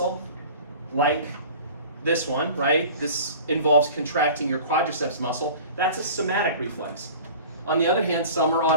like this one, right? This involves contracting your quadriceps muscle. That's a somatic reflex. On the other hand, some are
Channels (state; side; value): inverted; both; correlation -0.41